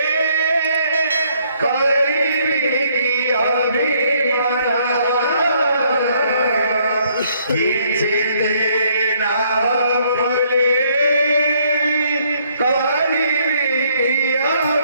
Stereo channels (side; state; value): both; inverted; correlation -0.67